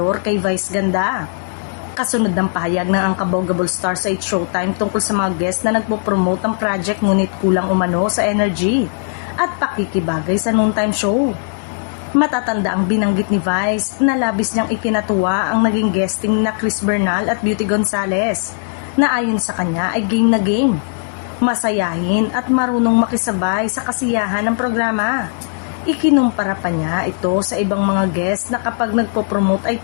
kay Vice Ganda. Kasunod ng pahayag ng Unkabaugable Star sa It's Showtime tungkol sa mga guest na nagpo-promote ng project ngunit kulang umano sa energy at pakikibagay sa noontime show. Matatanda ang binanggit ni Vice na labis niyang ikinatuwa ang naging guesting na Chris Bernal at Beauty Gonzalez na ayon sa kanya ay game na game. Masayahin at marunong makisabay sa kasiyahan ng programa. Ikinumpara pa niya ito sa ibang mga guest na kapag nagpo-promote ay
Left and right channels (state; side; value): silent; right; 59 dB below the other